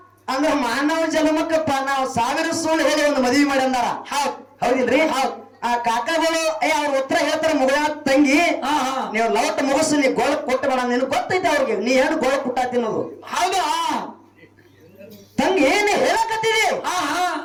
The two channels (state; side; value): identical; both; correlation 1.00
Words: ಅಂದ್ರ ಮಾನವ ಜನ್ಮಕ್ಕ ನಾವು 1000 ಸುಳ್ಳು ಹೇಳಿ ಒಂದು ಮದುವೆ ಮಾಡಿ ಅಂದಾರ ಹೌದಿಲ್ರಿ ಆ ಕಾಕಾಗಳು ಅವ್ರ ಉತ್ತರ ಹೇಳ್ತಾರ ಮುಗಳ ತಂಗಿ ನೀವು ಲವಟ್ ಮುಗಿಸು ನೀ ಗೋಳ ಕೊಟ್ಟು ಬೇಡ ನಿನ್ ಗೊತ್ತೈತೆ ಅವ್ರಿಗೆ ನೀ ಏನು ಗೋಳ ಕುಟ್ಟ ತಿನ್ನೋದು ಹೌದಾ ತಂಗಿ ಏನು ಹೇಳಕತ್ತಿದಿ ಹಾ ಹಾ